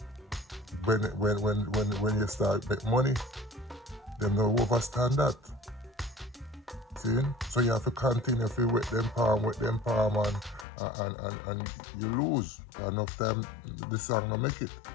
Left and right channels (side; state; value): right; drops out; at 10.7 s